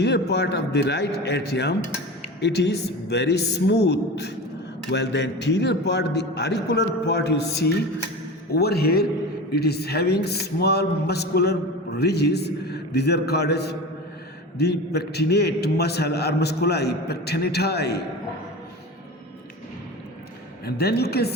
part of the right atrium, it is very smooth, while the anterior part, the auricular part you see over here, it is having small muscular ridges. These are called as the pectinate muscle or musculi pectinati. And then you can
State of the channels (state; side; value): normal; both; correlation 0.30